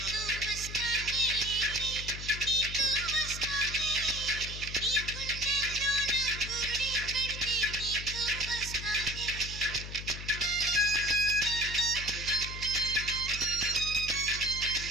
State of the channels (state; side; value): noise; left; hum, 9 dB below the sound